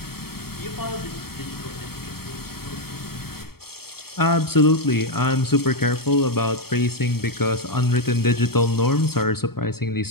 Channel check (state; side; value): late; right; 0.95 ms